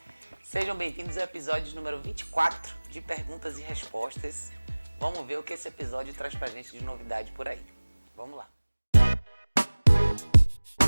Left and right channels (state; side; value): inverted; both; correlation -1.00